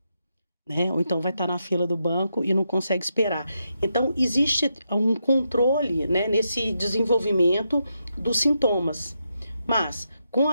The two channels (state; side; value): inverted; both; correlation -0.83